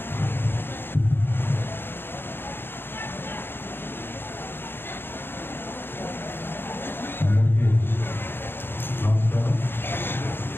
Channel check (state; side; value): late; right; 0.10 ms